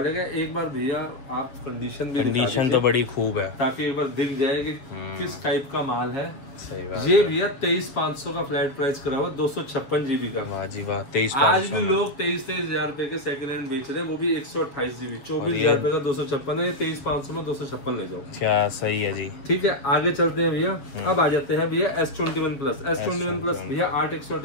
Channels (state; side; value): late; right; 7.2 ms